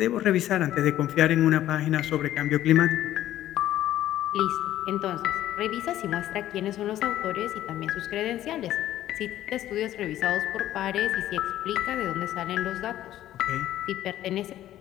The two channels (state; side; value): quieter; right; 13.1 dB